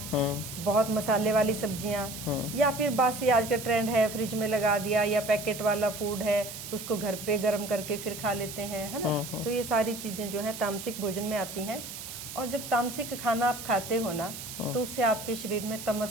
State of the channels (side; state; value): right; noise; hiss, 10 dB below the sound